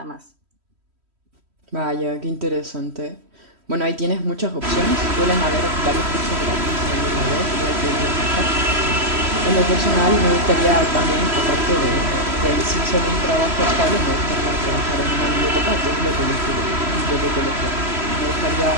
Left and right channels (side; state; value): left; late; 3.1 ms